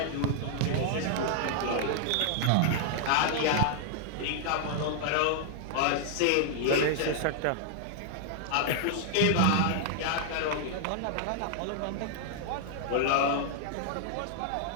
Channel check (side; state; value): both; different; correlation -0.01